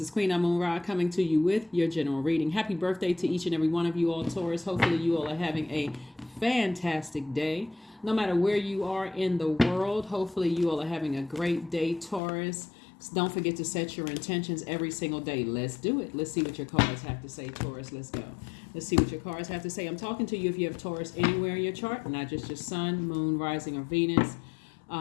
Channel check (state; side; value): drops out; right; at 12.2 s